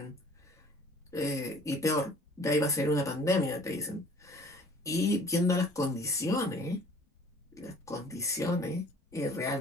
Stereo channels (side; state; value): both; normal; correlation 0.52